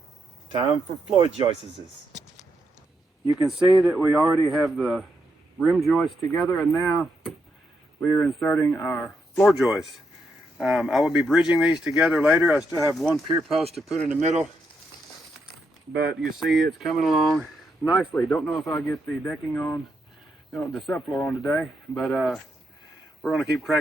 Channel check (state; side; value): normal; both; correlation 0.80